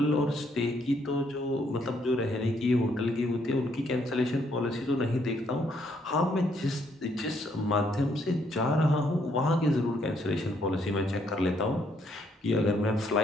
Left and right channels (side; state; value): both; normal; correlation 0.70